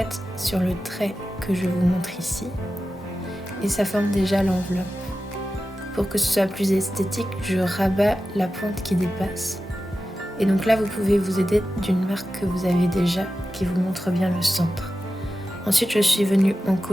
sur le trait que je vous montre ici, et ça forme déjà l'enveloppe. Pour que ce soit plus esthétique, je rabats la pointe qui dépasse. Et donc là, vous pouvez vous aider d'une marque que vous avez déjà, qui vous montre bien le centre. Ensuite, je suis venue en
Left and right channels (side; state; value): both; normal; correlation 0.93